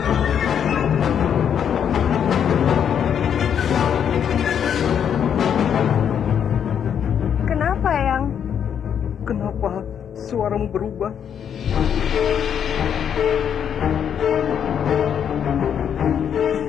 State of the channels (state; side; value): quieter; right; 8.4 dB